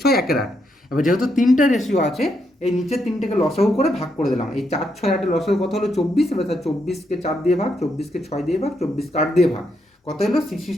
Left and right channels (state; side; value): normal; both; correlation 0.79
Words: 1/8। এবার যেহেতু তিনটে রেশিও আছে, এই নিচের তিনটেকে লসাগু করে ভাগ করে দিলাম। এই 4, 6, 8 লসাগু কত হলো 24। এবার 24কে 4 দিয়ে ভাগ, 24কে 6 দিয়ে ভাগ, 24কে 8 দিয়ে ভাগ, কত হলো